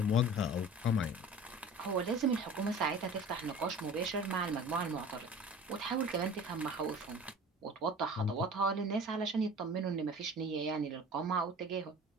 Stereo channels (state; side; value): normal; both; correlation 0.41